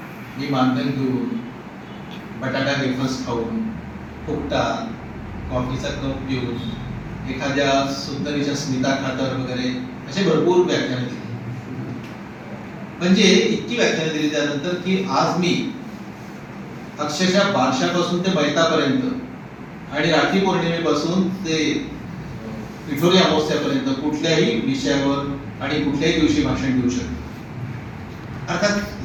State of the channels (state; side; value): identical; both; correlation 1.00